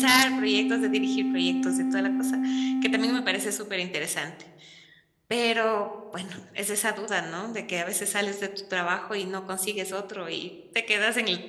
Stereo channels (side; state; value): both; identical; correlation 1.00